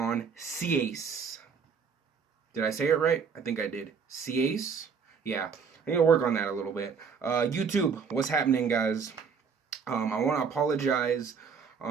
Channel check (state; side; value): quieter; left; 6.1 dB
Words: CACE. Did I say it right? I think I did. CACE? Yeah, I need to work on that a little bit. YouTube, what's happening, guys? I want to apologize